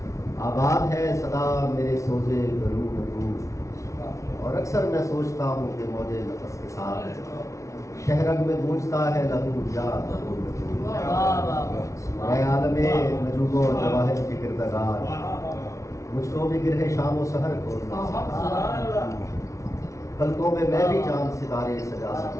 آباد ہے صدا میرے سوزے گلو گلو، اور اکثر میں سوچتا ہوں کہ موجے نفس کے ساتھ شہرگ میں گونجتا ہے لہو یا لہو لہو۔ اے عالم نجوم و جواہر کے کردگار، مجھ کو بھی گرہ شام و سحر کھولنا سکھا، پلکوں میں بھی چاند ستارے سجا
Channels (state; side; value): late; right; 0.15 ms